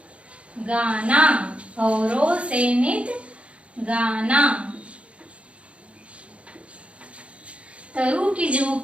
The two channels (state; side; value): late; left; 0.061 ms